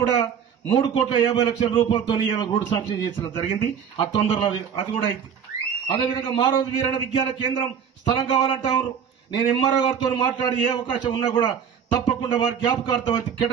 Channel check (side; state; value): left; quieter; 7.6 dB